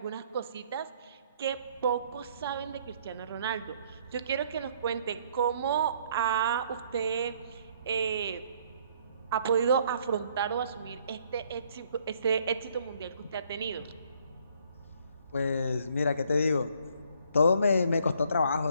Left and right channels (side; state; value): both; inverted; correlation -0.64